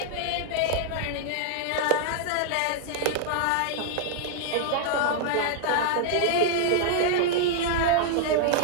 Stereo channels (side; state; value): both; different; correlation 0.00